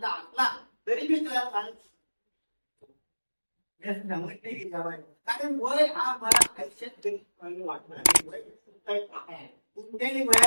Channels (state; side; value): inverted; both; correlation -1.00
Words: असला तरी मी तुला कारण वय हा मला आयुष्यात वाटणार. कुठल्याही